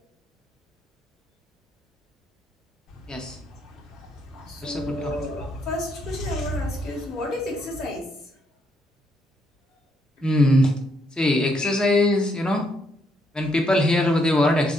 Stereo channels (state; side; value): normal; both; correlation 0.74